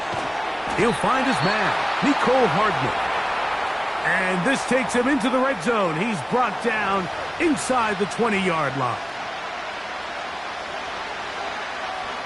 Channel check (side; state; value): both; identical; correlation 1.00